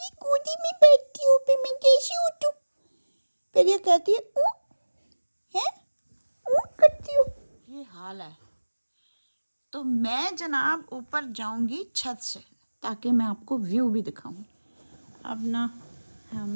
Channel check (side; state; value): both; inverted; correlation -1.00